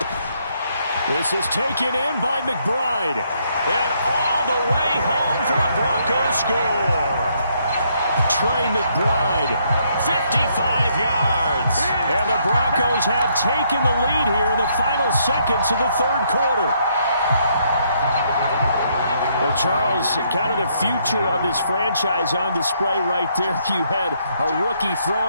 This is taken in by McBride. And all the way home for a Broncos score. Trey McBride, 55 yards. And the Broncos have taken the lead here in the final seconds of the 3rd quarter. Well, Charles, kind of the future of this franchise on display right there. You had a rookie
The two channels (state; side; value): inverted; both; correlation -0.72